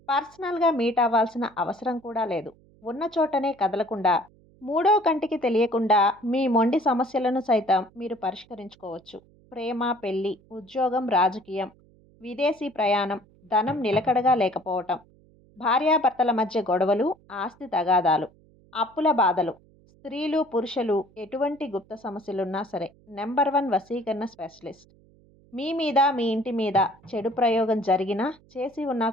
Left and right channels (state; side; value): noise; right; hum, 29 dB below the sound